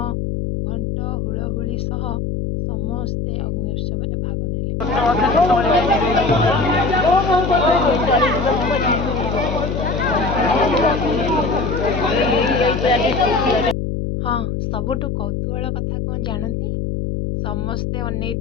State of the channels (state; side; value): noise; left; hum, 2 dB below the sound